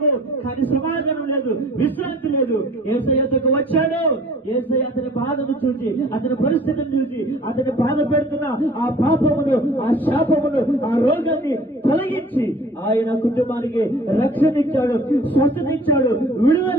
కానీ సమాధానం లేదు, విశ్రాంతి లేదు. యేసయ్య యొద్దకు వచ్చాడు. యేసయ్య అతని బాధను చూసి, అతని పరిస్థితిని చూసి, అతని బాధ పెడుతున్న ఆ పాపమును, ఆ శాపమును, ఆ రోగాన్ని తొలగించి ఆయన కుటుంబానికి రక్షణ ఇచ్చాడు, స్వస్థత ఇచ్చాడు,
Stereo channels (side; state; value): both; normal; correlation 0.50